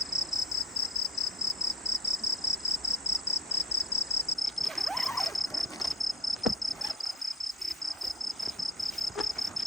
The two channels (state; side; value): normal; both; correlation 0.34